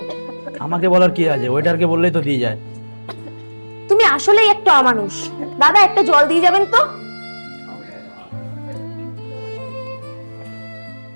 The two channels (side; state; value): both; inverted; correlation -1.00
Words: আমাকে বলার কি আছে? ওয়েটারকে বললেই তো দিয়ে যায়। তুমি আসলেই একটা অমানুষ। দাদা, একটা জল দিয়ে যাবেন তো।